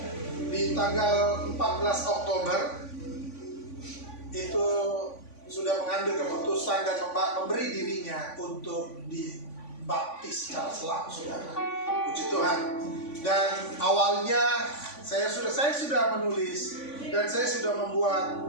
di tanggal 14 Oktober itu sudah mengambil keputusan dan memberi dirinya untuk dibaptis secara selam, saudara. Puji Tuhan. Dan awalnya saya sudah menulis dan saya sudah membuat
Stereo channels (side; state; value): right; late; 3.5 ms